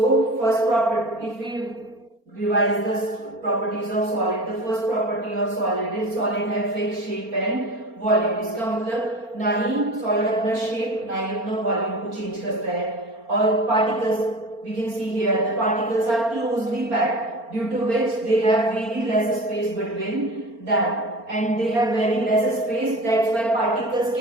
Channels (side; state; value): left; late; 4.4 ms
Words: first property, if we revise the properties of solid, the first property of solid is solid have fixed shape and volume. इसका मतलब ना ही solid अपना shape ना ही अपना volume को change करता है. और particles, we can see here the particles are closely packed, due to which they have very less space between them, and they have very less space. That's why particles